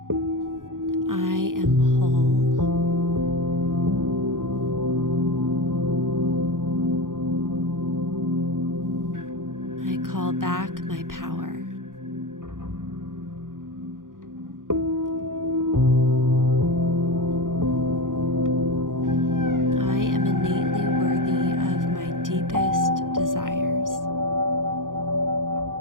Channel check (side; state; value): left; late; 0.90 ms